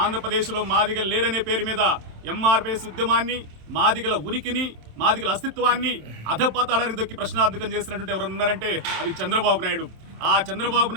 మాదిగలు లేరనే పేరు మీద ఎంఆర్పీఎస్ ఉద్యమాన్ని, మాదిగల ఉనికిని, మాదిగల అస్తిత్వాన్ని అధపాతాళానికి దొక్కి ప్రశ్నార్థకం చేసినటువంటి ఎవరు ఉన్నారంటే అది చంద్రబాబు నాయుడు. ఆ చంద్రబాబు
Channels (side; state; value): left; late; 27 ms